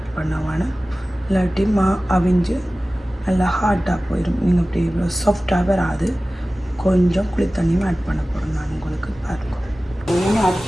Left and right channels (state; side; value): normal; both; correlation 0.97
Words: பண்ண வேணும். இல்லாட்டி அவிஞ்சு நல்லா ஹார்டாக போயிடும். நீங்கள் இப்படி இவ்வளோ சாஃப்டாக வராது. கொஞ்சம் குளி தண்ணியும் ஆட் பண்ண போகிறேன் நான் உங்களுக்கு பாருங்க. ஆட்